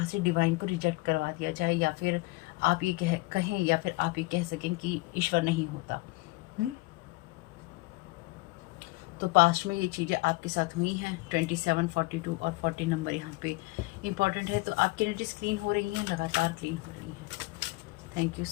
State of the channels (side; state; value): right; quieter; 22.8 dB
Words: से डिवाइन को रिजेक्ट करवा दिया जाए, या फिर आप ये कहें या फिर आप ये कह सकें कि ईश्वर नहीं होता। तो पास्ट में ये चीज़ें आपके साथ हुई हैं। 27, 42 और 40 नंबर यहाँ पे इम्पॉर्टेंट है। तो आपकी एनर्जीज क्लीन हो रही हैं, लगातार क्लीन हो रही हैं। Thank you